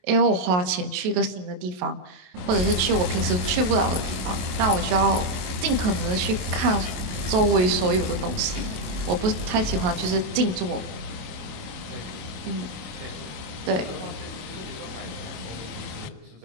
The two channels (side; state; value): left; late; 28 ms